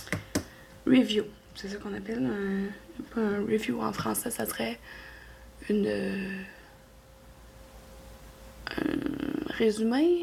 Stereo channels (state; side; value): identical; both; correlation 1.00